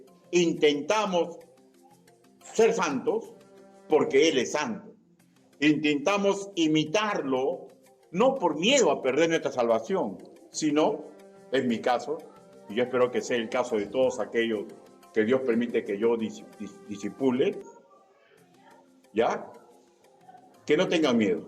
intentamos ser santos porque Él es santo. Intentamos imitarlo no por miedo a perder nuestra salvación, sino, en mi caso, y yo espero que sea el caso de todos aquellos que Dios permite que yo disipule, ¿ya? Que no tengan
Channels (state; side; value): identical; both; correlation 1.00